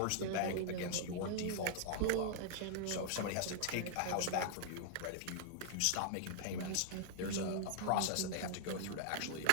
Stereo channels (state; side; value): different; both; correlation 0.00